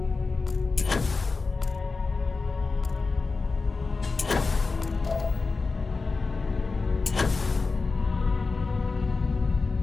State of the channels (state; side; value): quieter; right; 4.1 dB